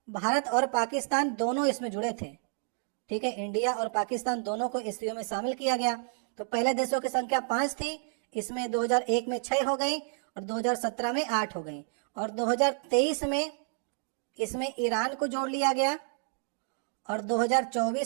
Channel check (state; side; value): silent; left; 58 dB below the other